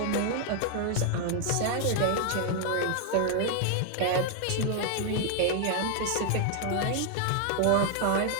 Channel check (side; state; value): both; different; correlation 0.00